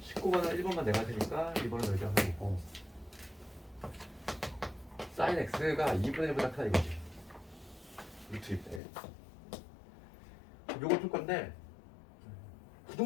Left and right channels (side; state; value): right; drops out; at 8.8 s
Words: 19번은 1번만 내가 되니까 2번은 너희가 하는 거고 sin x가 2분의 1보다 크다 이거지. 루트 2분의 1. 요걸 풀 건데